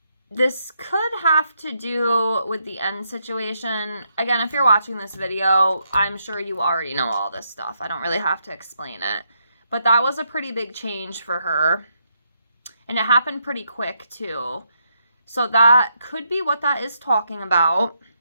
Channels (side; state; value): both; inverted; correlation -0.78